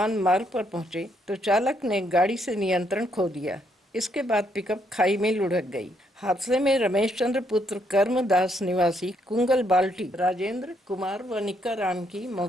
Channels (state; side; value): normal; both; correlation 0.73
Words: मार्ग पर पहुंचे तो चालक ने गाड़ी से नियंत्रण खो दिया। इसके बाद पिकअप खाई में लुढ़क गई। हादसे में रमेश चंद्र पुत्र कर्मदास निवासी कुंगल बाल्टी, राजेंद्र कुमार व निक्का राम की